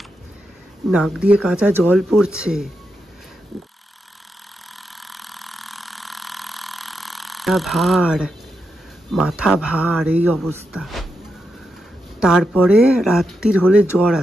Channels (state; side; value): normal; both; correlation 0.85